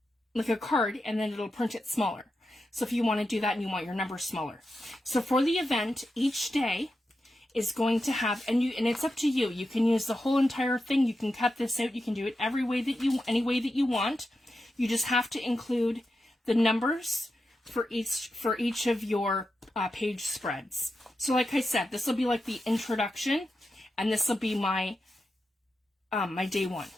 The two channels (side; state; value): both; normal; correlation 0.89